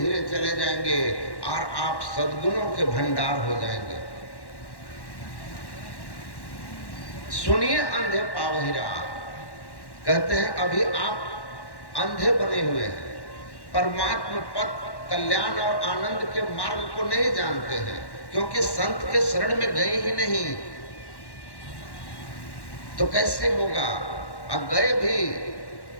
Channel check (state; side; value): late; right; 1.1 ms